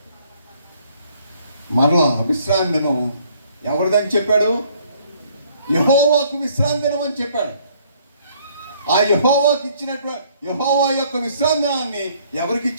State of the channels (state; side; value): inverted; both; correlation -0.63